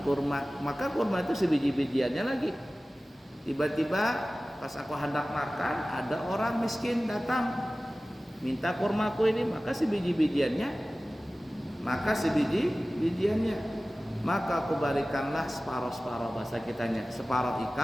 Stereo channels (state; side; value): normal; both; correlation 0.97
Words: kurma. Maka kurma itu sebiji-bijiannya lagi. Tiba-tiba pas aku hendak makan, ada orang miskin datang minta kurmaku ini, maka sebiji-bijiannya, maka aku berikanlah separuh-separuh bahasa kitanya, separuh